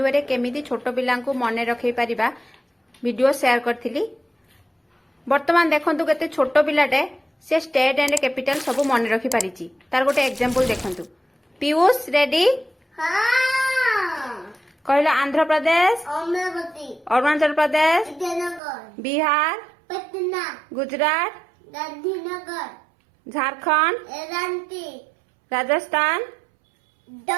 way केमिति छोट पिला मन रखी पारिबा वीडियो शेयर करथिली। वर्तमान देखंतु केते छोट पिलाटे से स्टेट एंड कैपिटल सब मन रखी पारिची। तार गोटे एग्जांपल देखंतु। पीयूष रेडी? कहला आंध्र प्रदेश, अरुणाचल प्रदेश, बिहार, पटना, गुजरात, गांधीनगर, झारखंड, रांची, राजस्थान,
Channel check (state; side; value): drops out; left; at 18.6 s